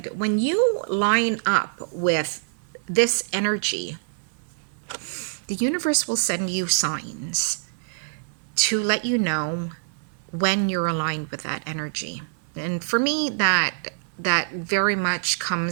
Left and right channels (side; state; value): left; silent; 58 dB below the other